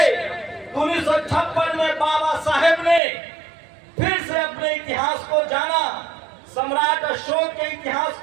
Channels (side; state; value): left; drops out; at 3.0 s